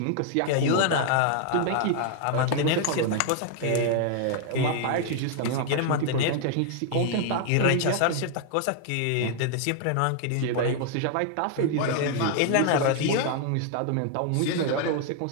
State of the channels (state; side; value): different; both; correlation 0.00